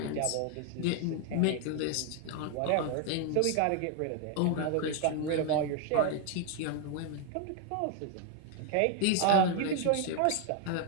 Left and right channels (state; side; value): different; both; correlation 0.00